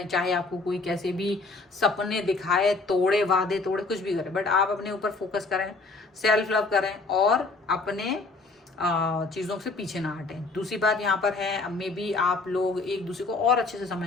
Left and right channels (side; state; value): right; quieter; 3.6 dB